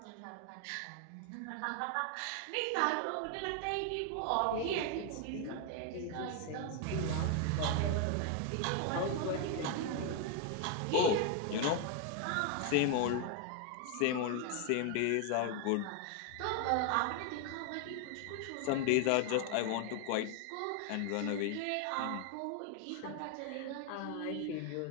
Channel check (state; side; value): different; both; correlation 0.01